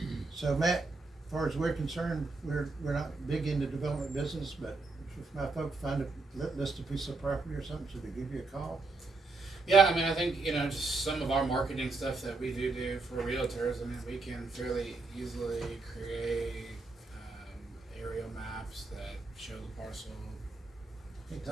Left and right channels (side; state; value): left; quieter; 3.6 dB